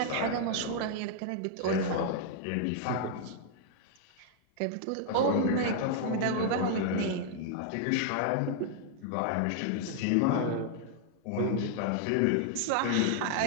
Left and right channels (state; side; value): different; both; correlation -0.01